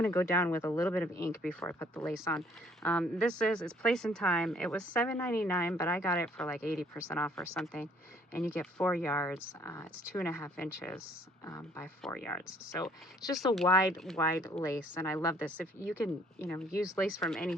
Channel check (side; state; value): both; normal; correlation 0.60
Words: to go down with a little bit of ink before I put the lace on. It's Place and Time. It was $7.99, but I got it for like 80% off or something. And you get 4 yards. It's 2.5 inches by 4 yards. So it's just a wide lace, and I love this. If you can, use lace from